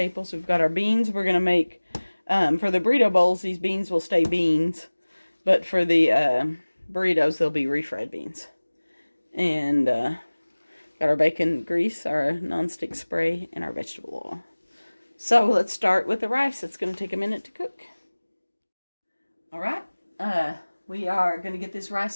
We've got our beans. We're going to make, for the burrito bowls, these beans will stay beans. But for the burritos, they'll be refried beans. And got our bacon grease, our nonstick spray, and our vegetable oil. So let's start with the rice. It's going to take a minute to cook. All right. We are going to get this rice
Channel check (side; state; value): both; inverted; correlation -1.00